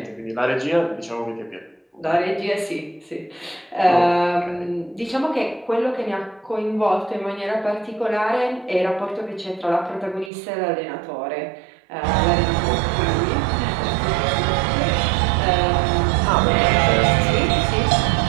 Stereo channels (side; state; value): left; drops out; at 10.3 s